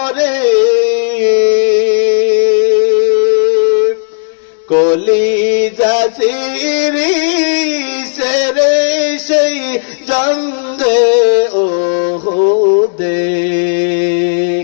কলিজা সিরি সেরে সেই জঙ্গে ওহুদে।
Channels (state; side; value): silent; right; digital silence